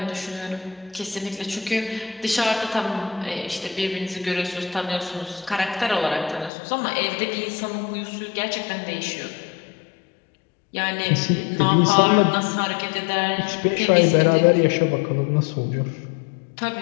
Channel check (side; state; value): right; drops out; at 6.5 s